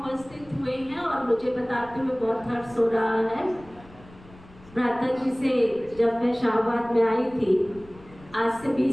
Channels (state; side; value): noise; left; rumble, 22 dB below the sound